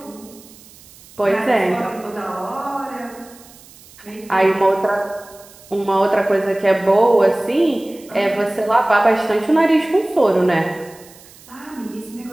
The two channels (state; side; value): noise; right; hiss, 23 dB below the sound